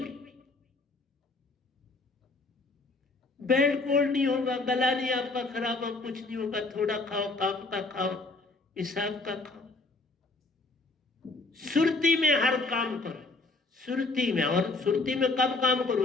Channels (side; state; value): right; quieter; 3.4 dB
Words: बेड कोल्ड नहीं होगा, गला नहीं आपका खराब हो, कुछ नहीं होगा। थोड़ा खाओ, काम का खाओ, हिसाब का खाओ, सुरती में हर काम करो, सुरती में। और सुरती में कब काम